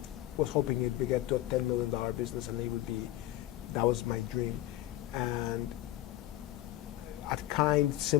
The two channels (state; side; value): quieter; right; 15.1 dB